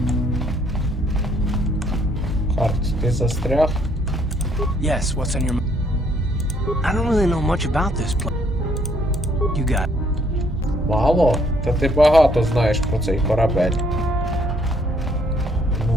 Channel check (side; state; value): both; normal; correlation 0.67